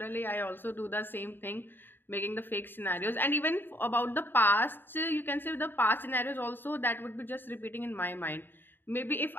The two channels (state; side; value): late; right; 0.096 ms